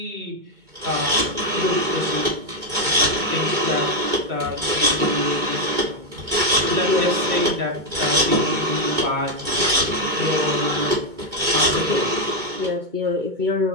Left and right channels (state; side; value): late; left; 2.2 ms